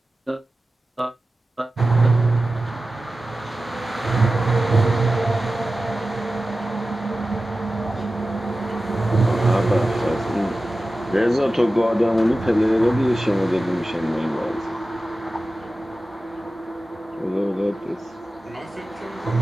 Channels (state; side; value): normal; both; correlation 0.95